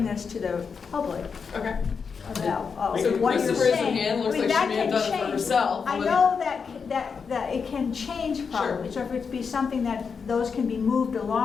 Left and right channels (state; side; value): quieter; right; 5.8 dB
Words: this to the public. Okay. About so what you're Christopher's saying. hand looks like she may have done it for herself. I know that it can change probably. Sure. So if it's be something that those can be moved